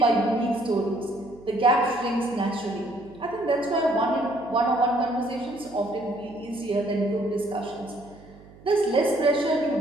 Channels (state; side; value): noise; right; hum, 22 dB below the sound